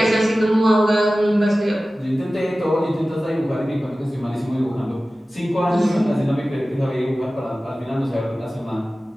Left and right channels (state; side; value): normal; both; correlation 0.96